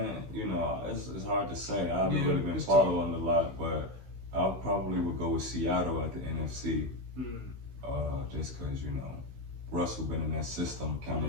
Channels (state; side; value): late; left; 15 ms